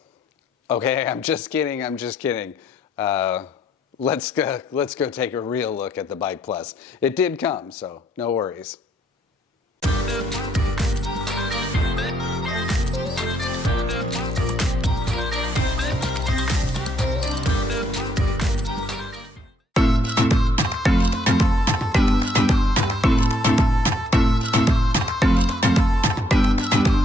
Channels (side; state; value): both; normal; correlation 0.70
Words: Okay, I'm just kidding. Let's go take a real look at the Bike Plus. It did come, so no worries.